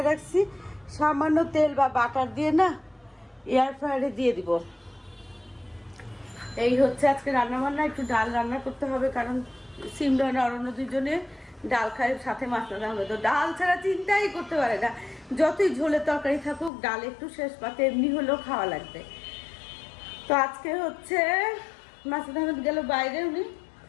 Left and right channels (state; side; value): drops out; right; at 16.7 s